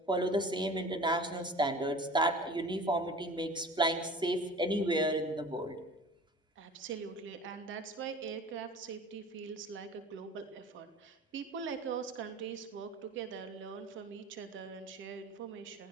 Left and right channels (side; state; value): both; normal; correlation 0.41